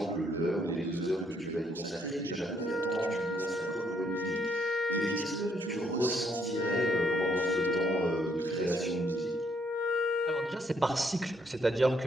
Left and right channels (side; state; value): both; normal; correlation 0.71